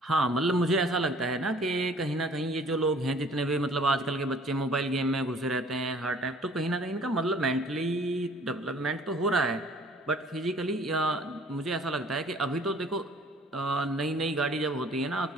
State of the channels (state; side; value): normal; both; correlation 0.54